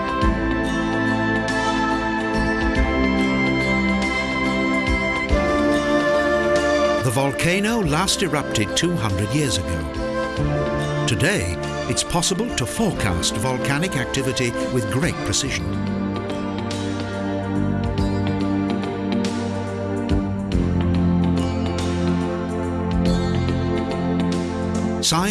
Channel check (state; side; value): identical; both; correlation 1.00